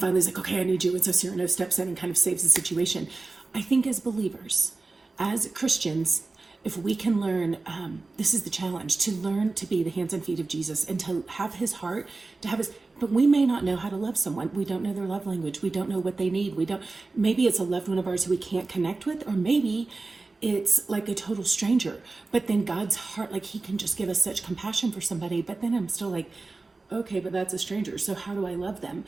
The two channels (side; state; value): left; quieter; 3.6 dB